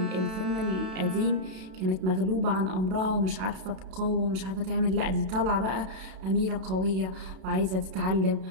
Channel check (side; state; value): left; late; 32 ms